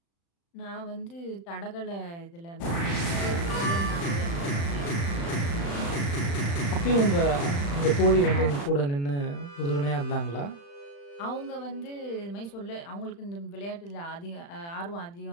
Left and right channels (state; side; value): late; right; 35 ms